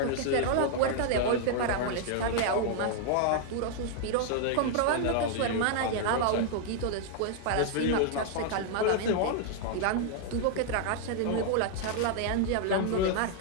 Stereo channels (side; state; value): both; different; correlation 0.00